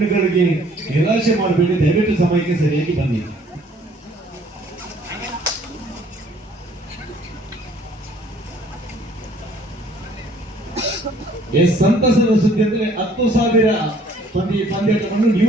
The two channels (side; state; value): both; normal; correlation 0.59